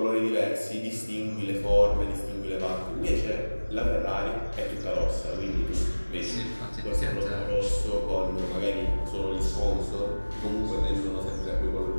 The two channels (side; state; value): both; inverted; correlation -1.00